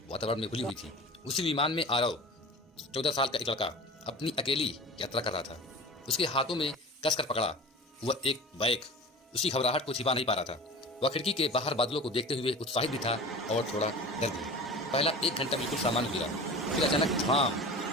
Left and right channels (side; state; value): both; normal; correlation 0.36